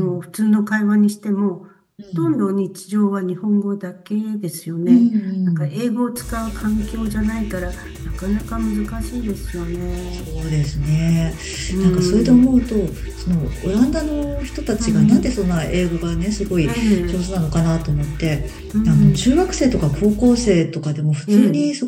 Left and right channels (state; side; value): identical; both; correlation 1.00